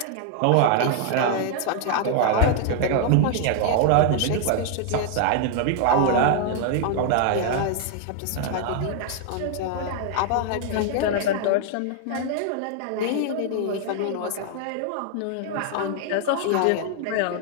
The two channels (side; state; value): both; different; correlation 0.00